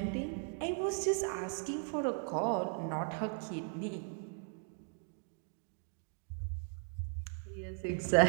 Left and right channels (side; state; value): left; silent; 53 dB below the other